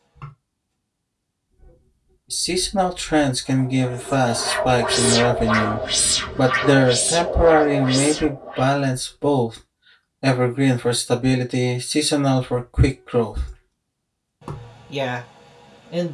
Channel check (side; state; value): both; identical; correlation 1.00